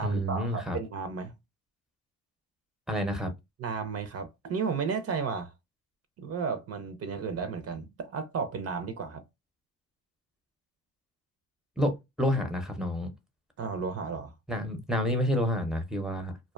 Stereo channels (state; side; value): normal; both; correlation 0.35